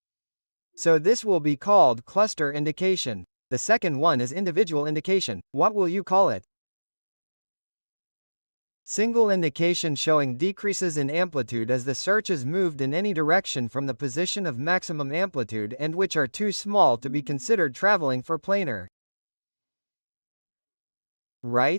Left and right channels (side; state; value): both; inverted; correlation -1.00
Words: So this will be called cluster indication. The second one is individual indication. What will you call it? Single indication showing decreases in amplitude as the search is moved in any direction from the position of maximum amplitude and which are too small to be considered traveling for planar.